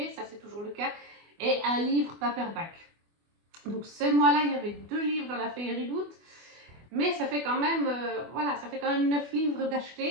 ça c'est toujours le cas, et un livre paperback. Donc ce mois-là, il y avait 2 livres dans la Féerie Loot, mais ça fait quand même, voilà, ça fait quand même 9 livres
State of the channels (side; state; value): left; late; 24 ms